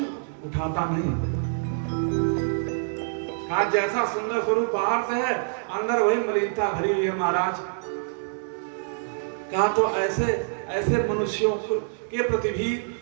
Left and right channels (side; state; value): left; silent; digital silence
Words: उठाता नहीं। आज जैसा सुंदर स्वरूप बाहर से है, अंदर वही मलिनता भरी हुई है महाराज। कहा तो ऐसे ऐसे मनुष्यों के प्रति भी